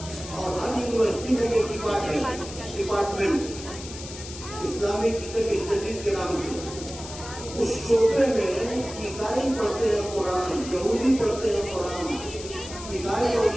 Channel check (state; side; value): noise; left; hiss, 12 dB below the sound